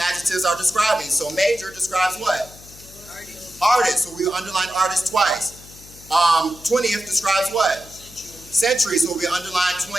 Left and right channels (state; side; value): noise; left; hum, 21 dB below the sound